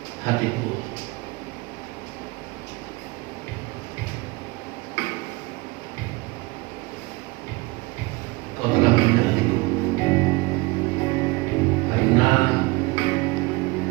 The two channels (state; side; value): quieter; left; 23.7 dB